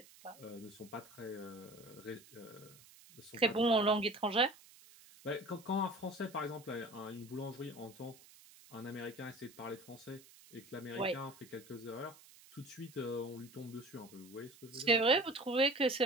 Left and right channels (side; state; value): right; noise; hiss, 22 dB below the sound